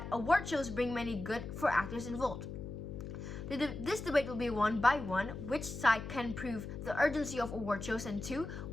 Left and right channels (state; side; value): noise; left; hum, 8 dB below the sound